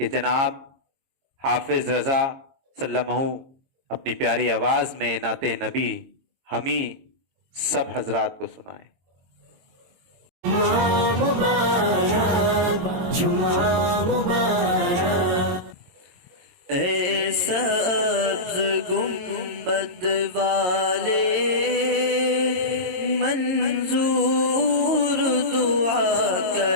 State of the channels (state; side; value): late; left; 23 ms